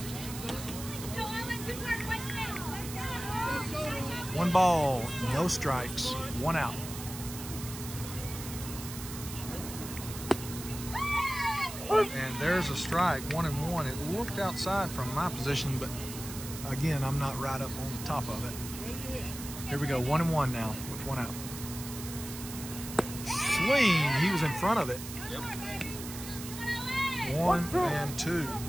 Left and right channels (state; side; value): noise; right; hiss, 10 dB below the sound